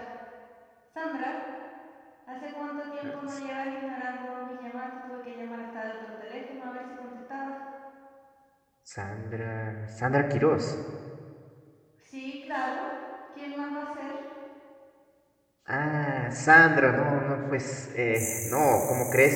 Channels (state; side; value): identical; both; correlation 1.00